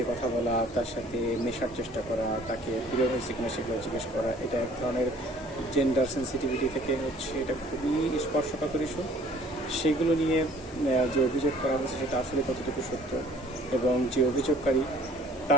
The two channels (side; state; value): both; normal; correlation 0.54